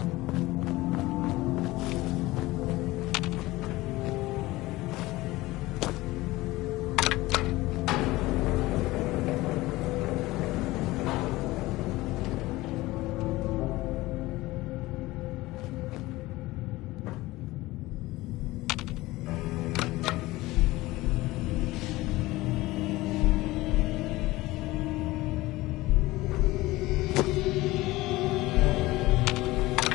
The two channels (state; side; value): quieter; right; 19.2 dB